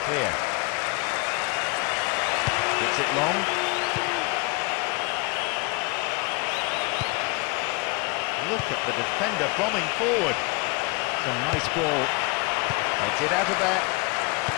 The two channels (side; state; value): right; quieter; 27.5 dB